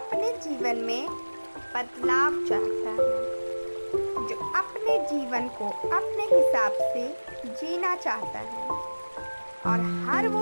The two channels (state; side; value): inverted; both; correlation -1.00